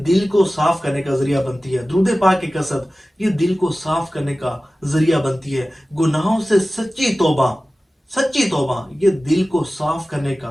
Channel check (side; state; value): both; normal; correlation 0.96